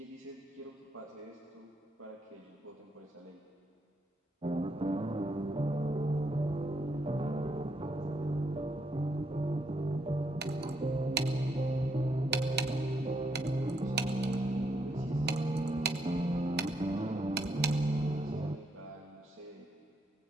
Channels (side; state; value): both; normal; correlation 0.77